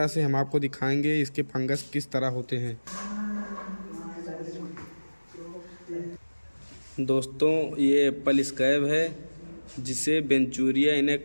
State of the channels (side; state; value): both; inverted; correlation -1.00